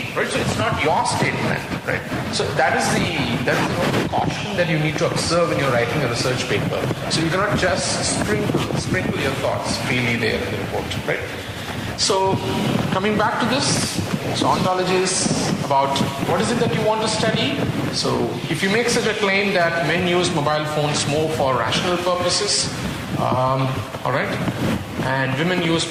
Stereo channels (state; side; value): identical; both; correlation 1.00